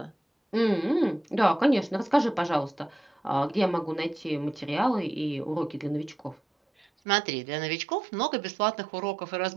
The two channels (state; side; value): drops out; left; at 6.9 s